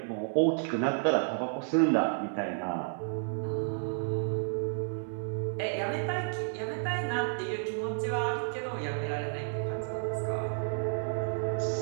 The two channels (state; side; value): silent; left; 55 dB below the other